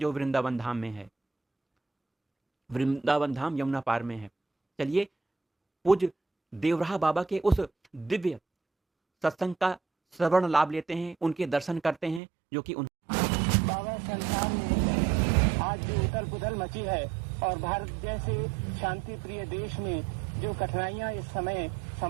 वृंदावन धाम में है। वृंदावन धाम यमुना पार में है। चलिए पूज्य देवराह बाबा के उस दिव्य सत्संग का श्रवण लाभ लेते हैं, उनके दर्शन करते हैं, जो कि बाबा संसार में आज जो उथल पुथल मची है और भारत जैसे शांति प्रिय देश में जो कठिनाइयां इस समय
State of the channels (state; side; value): drops out; left; at 12.2 s